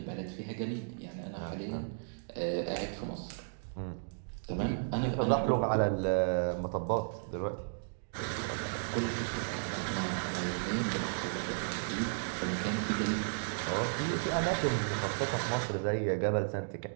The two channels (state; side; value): silent; left; digital silence